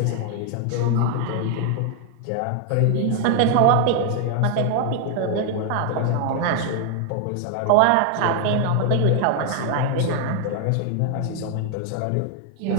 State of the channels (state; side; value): different; both; correlation 0.00